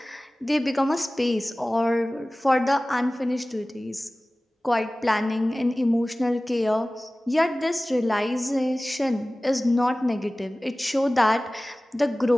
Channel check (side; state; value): both; normal; correlation 0.98